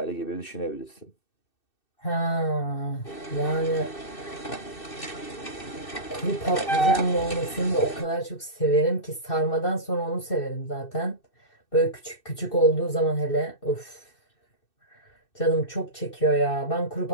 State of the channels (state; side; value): late; right; 2.6 ms